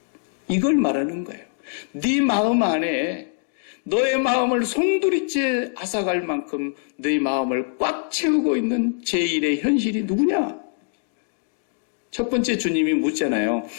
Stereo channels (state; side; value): silent; right; 58 dB below the other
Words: 이걸 말하는 거예요. 네 마음 안에 너의 마음을 송두리째 앗아갈 만큼 너의 마음을 꽉 채우고 있는 제1의 현실이 누구냐? 첫 번째 주님이 묻잖아요.